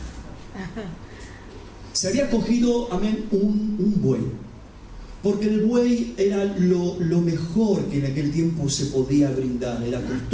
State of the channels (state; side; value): identical; both; correlation 1.00